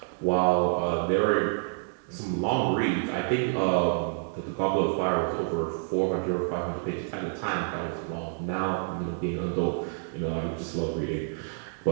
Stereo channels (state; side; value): silent; left; digital silence